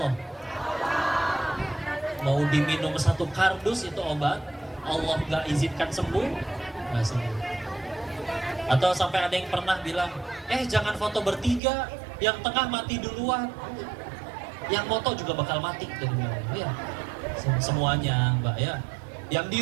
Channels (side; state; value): left; drops out; at 11.6 s